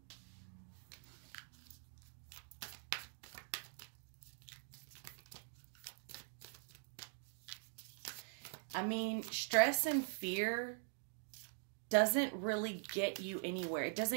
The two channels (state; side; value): silent; left; digital silence